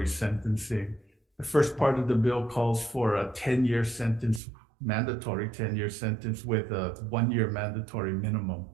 sentencing. The first part of the bill calls for a 10-year sentence, mandatory 10-year sentence with a 1-year mandatory minimum.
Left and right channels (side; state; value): left; drops out; at 4.4 s